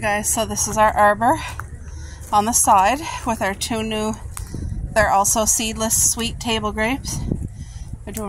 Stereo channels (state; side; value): identical; both; correlation 1.00